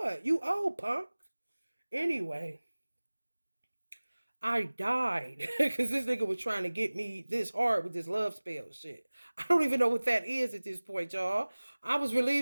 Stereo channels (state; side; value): inverted; both; correlation -1.00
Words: You old punk. Anyway, I died because this nigga was trying to get me this hard with this love spell shit. I don't even know what that is at this point, y'all. I was